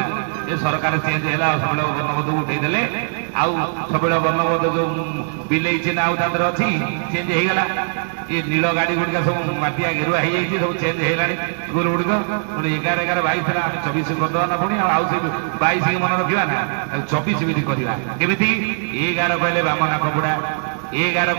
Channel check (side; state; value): left; silent; digital silence